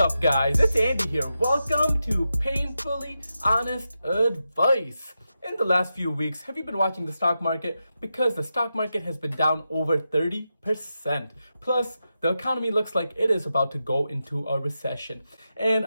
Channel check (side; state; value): both; inverted; correlation -0.89